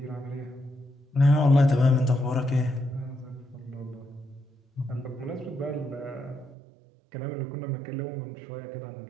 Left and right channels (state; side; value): drops out; left; at 6.6 s